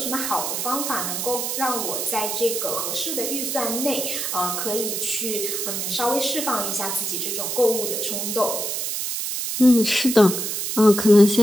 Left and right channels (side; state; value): right; noise; hiss, 2 dB below the sound